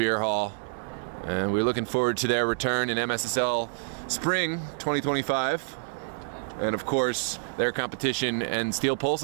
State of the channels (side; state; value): left; silent; digital silence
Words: And we're looking forward to their return in MSSL Spring 2025. And of course, their competition and Steel